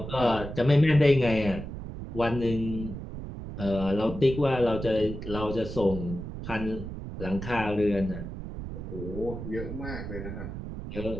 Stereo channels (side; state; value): right; noise; rumble, 8 dB below the sound